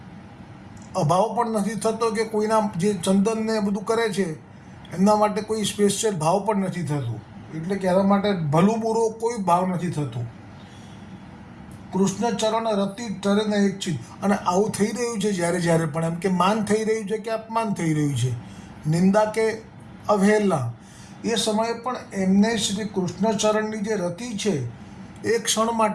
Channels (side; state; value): both; identical; correlation 1.00